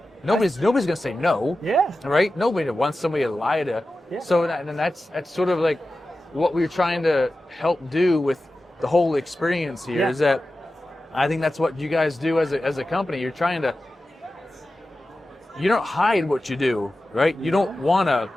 Nobody's gonna say no. Yeah. Right? Nobody wants somebody to lie to. Yeah. So that's sort of like what we're trying to help do with the whole experience here, is that I think that's what you guys do as a company. You're trying to, you don't hide what you do, right? You don't want to,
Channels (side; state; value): both; normal; correlation 0.94